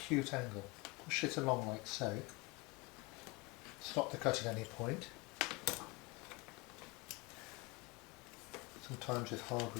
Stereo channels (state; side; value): quieter; right; 25.6 dB